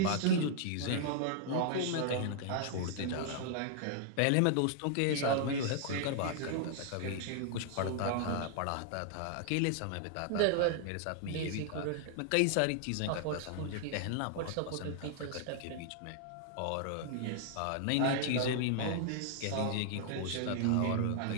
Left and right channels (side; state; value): both; different; correlation -0.01